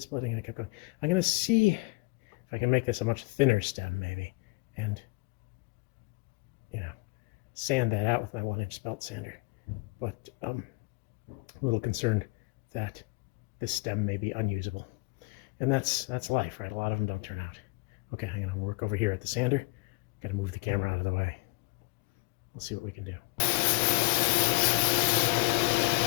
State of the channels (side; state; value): right; quieter; 25.3 dB